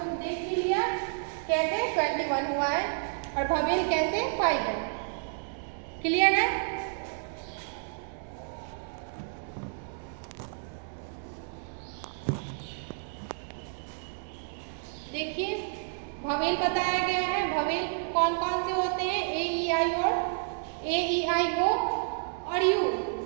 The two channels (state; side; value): silent; left; 58 dB below the other